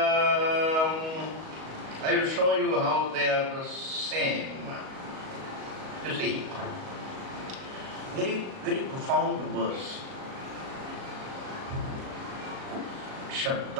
I will show you how they are the same. You see, very, very profound verse.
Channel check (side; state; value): left; late; 37 ms